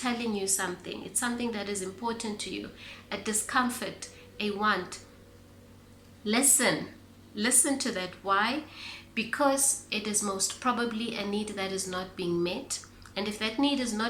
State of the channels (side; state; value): both; identical; correlation 1.00